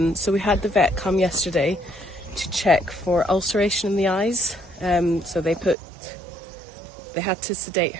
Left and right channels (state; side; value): drops out; left; at 5.8 s